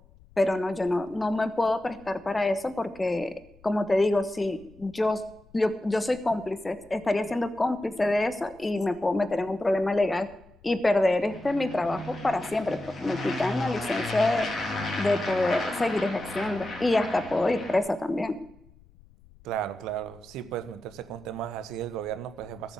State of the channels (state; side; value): noise; left; rumble, 27 dB below the sound